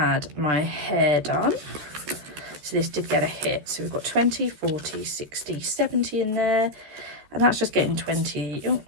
my hair done. So this did get a hit. So we've got 20, 40, 60, 70 in there. And that's just getting 20. Ooh,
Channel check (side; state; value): left; late; 13 ms